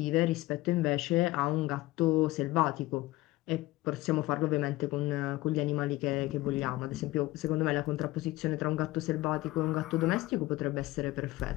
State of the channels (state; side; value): quieter; right; 18.4 dB